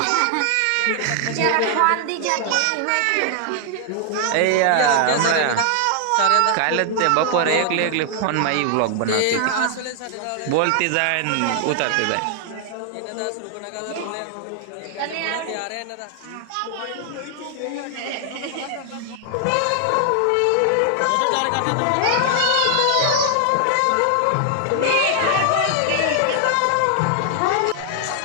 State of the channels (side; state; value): both; different; correlation 0.00